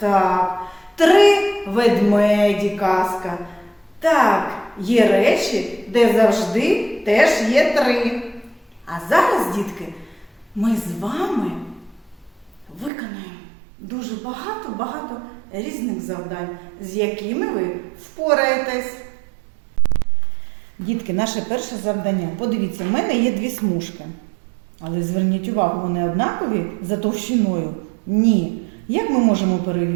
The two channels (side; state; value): left; drops out; at 12.9 s